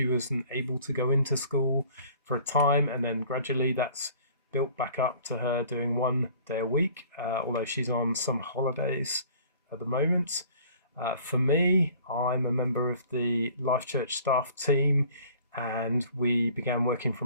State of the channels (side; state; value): both; inverted; correlation -0.51